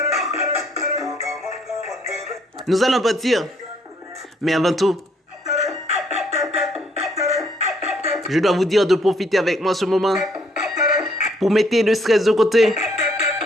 Nous allons partir. Mais avant tout, je dois vous dire de profiter avec moi ce moment pour mettre le stress de côté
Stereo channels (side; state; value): both; normal; correlation 0.67